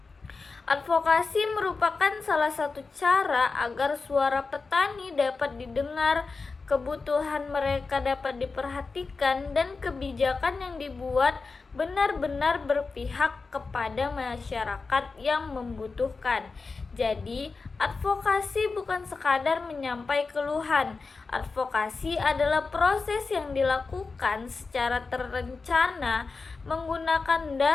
Advokasi merupakan salah satu cara agar suara petani dapat didengar, kebutuhan mereka dapat diperhatikan, dan kebijakan yang dibuat benar-benar berpihak kepada masyarakat yang membutuhkan. Jadi, advokasi bukan sekadar menyampaikan keluhan. Advokasi adalah proses yang dilakukan secara terencana, menggunakan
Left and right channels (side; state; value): right; quieter; 4.3 dB